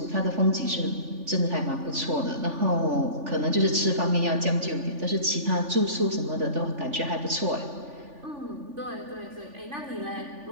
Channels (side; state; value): left; late; 3.4 ms